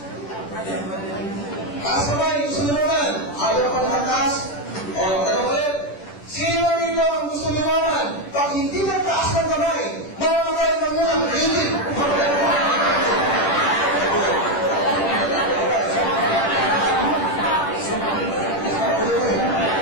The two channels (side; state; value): right; late; 10 ms